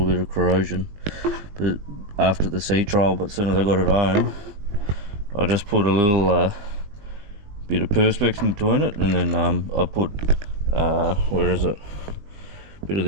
bit of corrosion but after the sea trial. But as soon as I got it home, I just put a little bit of perspex in between it, and then I put where is it, a bit of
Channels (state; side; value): late; left; 20 ms